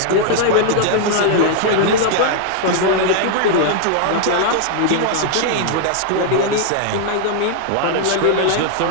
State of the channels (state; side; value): different; both; correlation -0.01